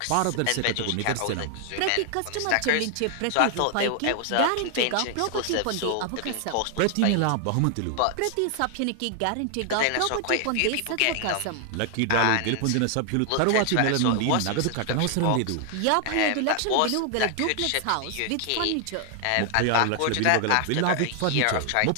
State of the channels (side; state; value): both; different; correlation 0.00